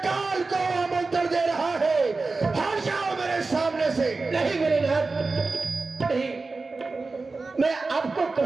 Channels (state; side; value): quieter; left; 3.8 dB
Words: काल को आमंत्रण दे रहा है? हट जाओ मेरे सामने से। नहीं मेरे नाथ, नहीं। मैं आपको